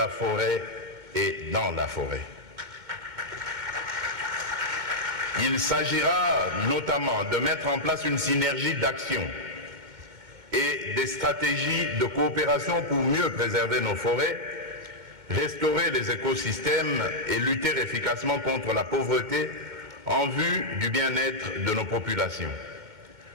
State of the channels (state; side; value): late; left; 2.2 ms